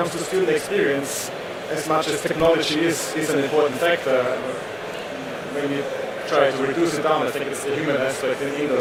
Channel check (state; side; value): identical; both; correlation 1.00